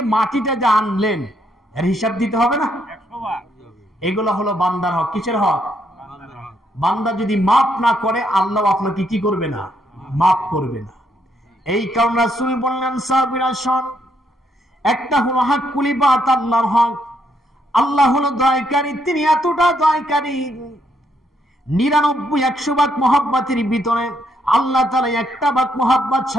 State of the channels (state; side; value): normal; both; correlation 0.74